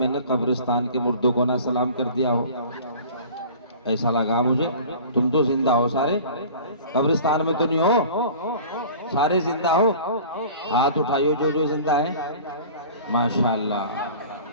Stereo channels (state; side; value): inverted; both; correlation -0.42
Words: نے قبرستان کے مردوں کو نہ سلام کر دیا ہو، ایسا لگا مجھے۔ تم تو زندہ ہو سارے، قبرستان میں تو نہیں ہو، سارے زندہ ہو؟ ہاتھ اٹھائیو جو جو زندہ ہے، ماشاءاللہ۔